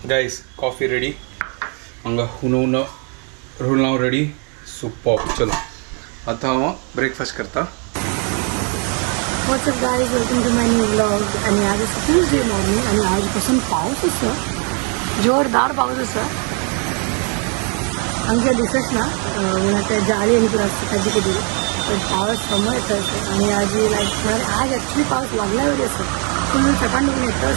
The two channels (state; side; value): quieter; left; 37.9 dB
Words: गाइस कॉफी रेडी हांगा हुनवून रोलांव रेडी सुपर. चलो आता हांव ब्रेकफास्ट करता. What's up guys, welcome to my new vlog. आणि आज ट्यूजडे मॉर्निंग आणि आजपासून पाऊस आसा, जोरदार पाऊस आसा. आमच्या दिसत ना त्या जाळी आणि तुला असते ताजी कधी पण पावस समोर येतं. आणि आज लाईक आज ॲक्च्युली पाऊस लागला वगैरे असं फुल सकाळ